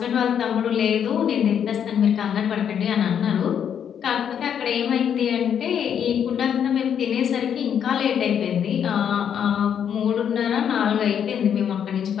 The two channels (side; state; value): right; quieter; 8.5 dB